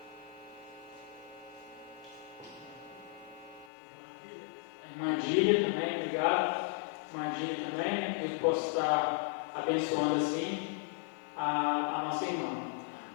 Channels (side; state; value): right; drops out; at 3.7 s